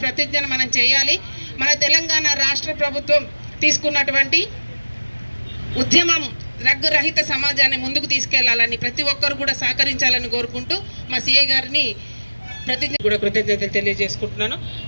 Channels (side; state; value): both; inverted; correlation -1.00